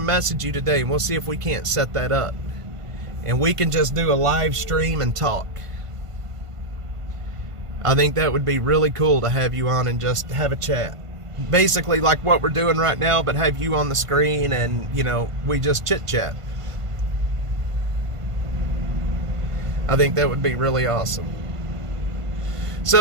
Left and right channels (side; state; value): left; late; 1.5 ms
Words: message you today, and we'll see if we can't set that up. And we can just do a live stream and talk. I think that would be really cool to have you on and just have a chat. Basically like what we're doing right now, but have you on the screen and, we just chit-chat. I think that would be really awesome.